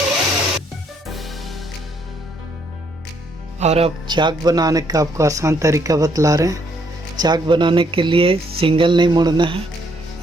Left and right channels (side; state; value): both; normal; correlation 0.70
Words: और अब चाक बनाने का आपको आसान तरीका बतला रहे हैं। चाक बनाने के लिए सिंगल नहीं मोड़ना है,